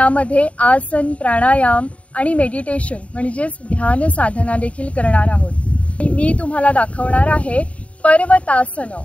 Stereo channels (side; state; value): right; late; 0.065 ms